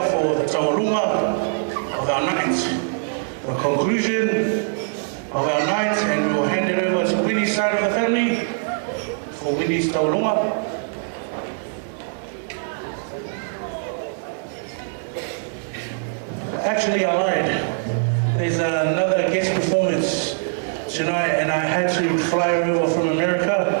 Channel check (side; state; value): left; silent; digital silence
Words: for the taurunga of our night, the conclusion of our night, and we will hand it over to Winnie's side of the family for Winnie's taurunga. Actually, I lied. There's another guest performance tonight, and I had to fly over from America.